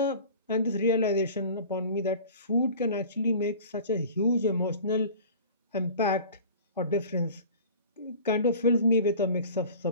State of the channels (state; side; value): inverted; both; correlation -0.41